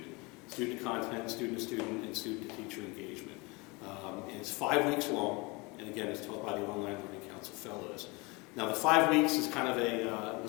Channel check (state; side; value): quieter; right; 26.5 dB